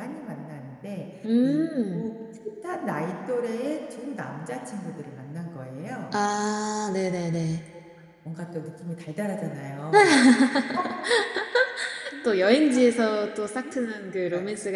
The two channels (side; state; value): both; identical; correlation 1.00